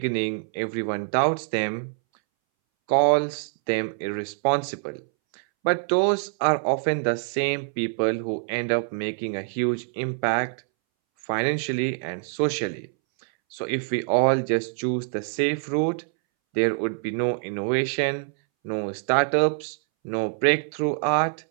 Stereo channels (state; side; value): silent; left; 62 dB below the other